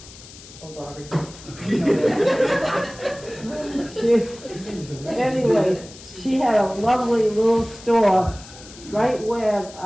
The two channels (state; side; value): noise; left; hiss, 18 dB below the sound